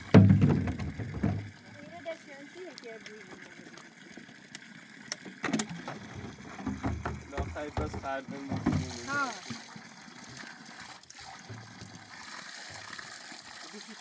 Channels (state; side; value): identical; both; correlation 1.00